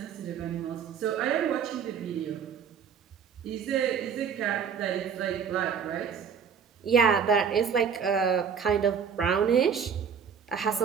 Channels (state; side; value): quieter; left; 6.9 dB